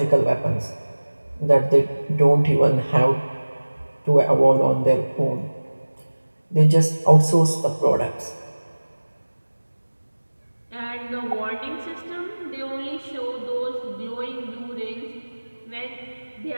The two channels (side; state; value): both; inverted; correlation -1.00